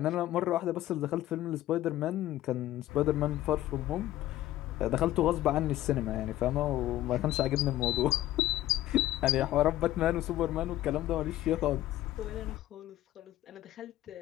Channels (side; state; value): right; quieter; 14.4 dB